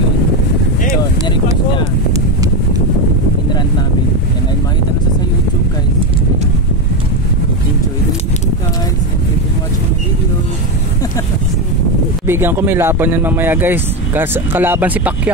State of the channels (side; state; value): both; normal; correlation 0.12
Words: So, nirequest niya. Inrant namin. Yan ay makita na sa YouTube guys. Enjoy the video guys and you can watch my video. Bigyan ko may laban yan mamaya guys. Kalaban si